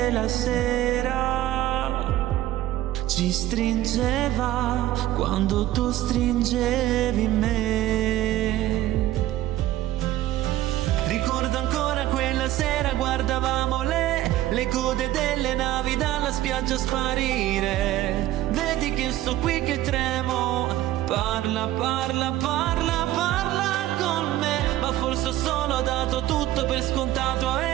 la sera ci stringeva quando tu stringevi me. Ricordo ancora quella sera, guardavamo le code delle navi dalla spiaggia sparire. Vedi che sto qui che tremo, parla con me. Ma forse ho solo dato tutto per scontato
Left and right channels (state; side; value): quieter; left; 14.5 dB